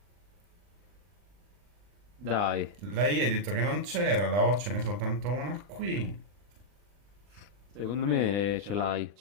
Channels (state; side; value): late; left; 40 ms